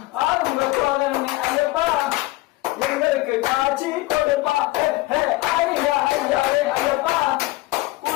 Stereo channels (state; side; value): quieter; right; 19.8 dB